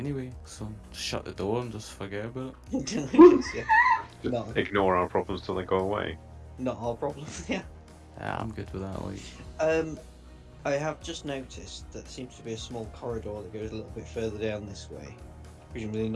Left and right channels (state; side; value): identical; both; correlation 1.00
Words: so just shut the door and just forget about it. yeah. Just No. ignore our problems till they go away. Not our problem. Yeah. Yeah, I'm good with that. Like, I have just noticed that there seems to be a small corridor that goes a little bit further down this way. Presumably